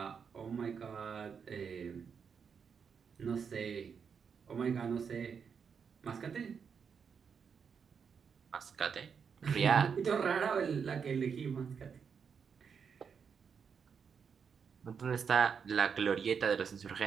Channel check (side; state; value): left; quieter; 6.5 dB